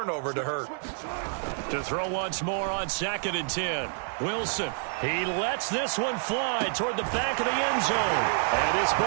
to hurt. To throw once more on 2nd and 10. Wilson, he lets this one fly toward the back of the end zone. And this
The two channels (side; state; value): left; silent; 59 dB below the other